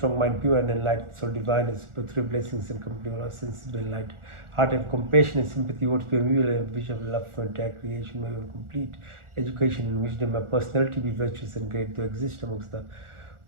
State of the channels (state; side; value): late; left; 1.4 ms